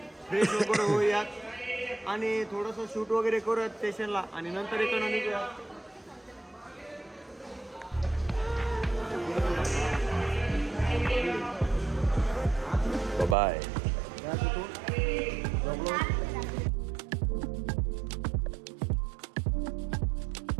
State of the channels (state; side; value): drops out; left; at 13.4 s